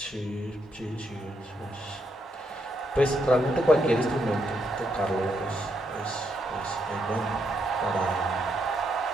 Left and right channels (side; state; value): both; normal; correlation 0.78